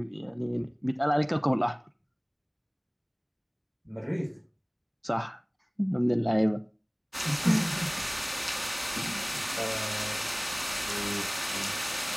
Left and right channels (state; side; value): identical; both; correlation 1.00